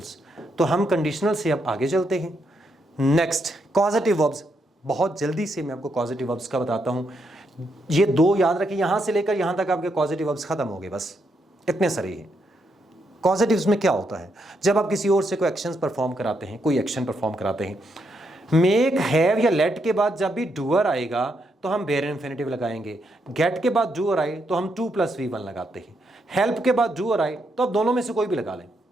तो हम कंडीशनल से अब आगे चलते हैं। Next, causative verbs. बहुत जल्दी से मैं आपको कॉजेटिव वर्ब्स का बताता हूं। ये दो याद रखिए, यहां से लेकर यहां तक आपके कॉजेटिव वर्ब्स खत्म हो गए, बस इतने सारे ही। कॉजेटिव्स में क्या होता है? जब आप किसी और से कोई एक्शंस परफॉर्म कराते हैं, कोई एक्शन परफॉर्म कराते हैं, मेक, हैव या लेट के बाद जब भी डूअर आएगा तो हम बेयर इन्फिनेटिव लगाएंगे। गेट के बाद डूअर आए तो हम 2 + V1 लगाते हैं। हेल्प के बाद डूअर आए तो अब दोनों में से कोई भी लगा लें।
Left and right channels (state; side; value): normal; both; correlation 0.79